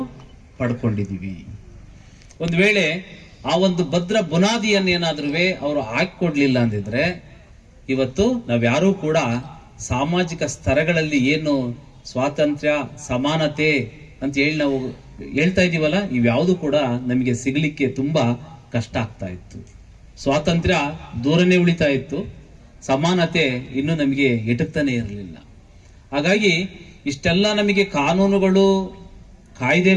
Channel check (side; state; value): both; identical; correlation 1.00